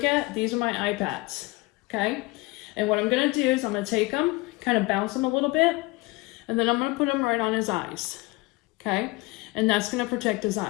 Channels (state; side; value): quieter; right; 22.8 dB